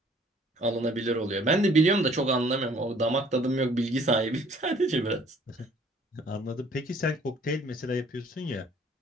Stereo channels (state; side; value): normal; both; correlation 0.57